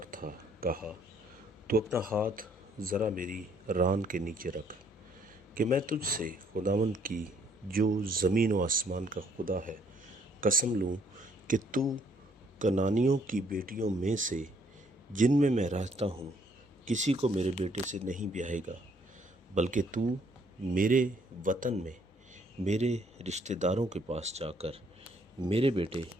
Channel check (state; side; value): normal; both; correlation 0.66